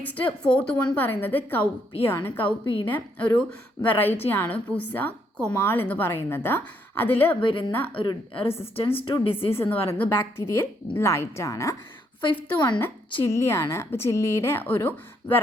ഫോർത്ത് വൺ പറയുന്നത് കൗപ്പിയാണ്. കൗപ്പിയുടെ ഒരു വെറൈറ്റിയാണ് പുസ കൊമാൾ എന്ന് പറയുന്നത്. അതിൽ വരുന്ന ഒരു റെസിസ്റ്റൻസ് ടു ഡിസീസ് എന്ന് പറയുന്നത് ബാക്ടീരിയൽ ബ്ലൈറ്റ് ആണ്. ഫിഫ്ത്ത് വണ്ണ് ചില്ലിയാണ്. അപ്പോൾ ചില്ലിയുടെ ഒരു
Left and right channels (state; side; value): normal; both; correlation 0.73